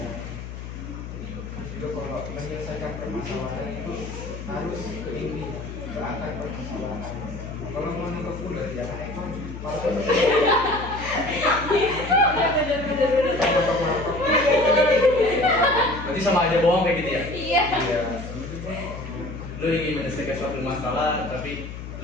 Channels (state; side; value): noise; left; hum, 10 dB below the sound